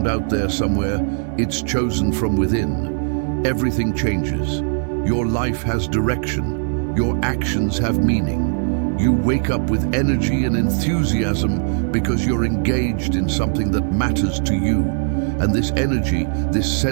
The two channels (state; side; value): silent; left; 60 dB below the other